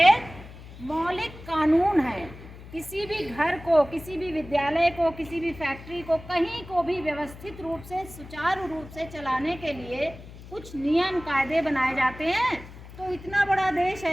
मौलिक कानून है। किसी भी घर को, किसी भी विद्यालय को, किसी भी फैक्ट्री को, कहीं को भी व्यवस्थित रूप से, सुचारू रूप से चलाने के लिए कुछ नियम कायदे बनाए जाते हैं। तो इतना बड़ा देश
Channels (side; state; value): left; noise; hum, 16 dB below the sound